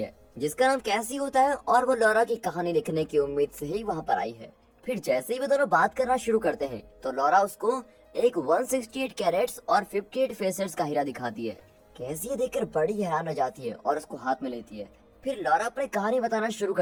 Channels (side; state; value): both; identical; correlation 1.00